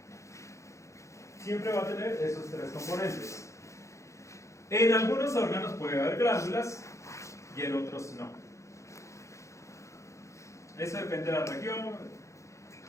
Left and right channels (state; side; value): late; right; 0.15 ms